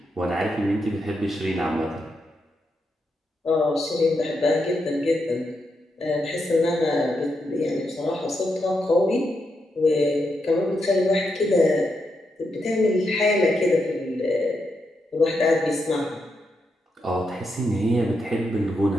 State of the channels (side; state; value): both; normal; correlation 0.83